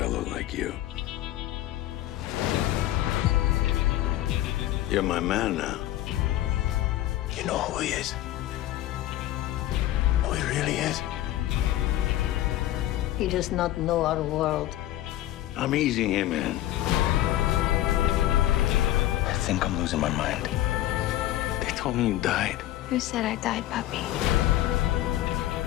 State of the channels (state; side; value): quieter; right; 14.0 dB